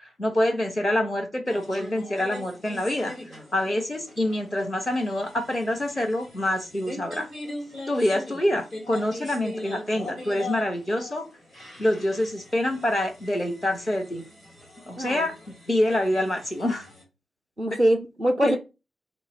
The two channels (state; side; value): normal; both; correlation 0.91